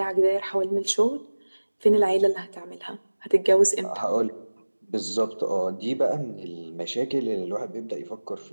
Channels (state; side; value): inverted; both; correlation -1.00